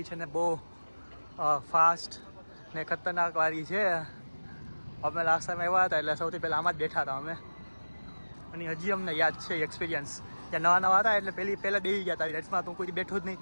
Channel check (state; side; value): inverted; both; correlation -1.00